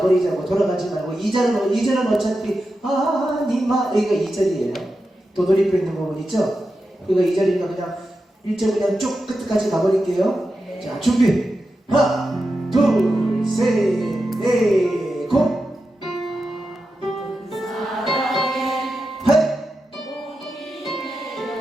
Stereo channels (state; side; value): normal; both; correlation 0.90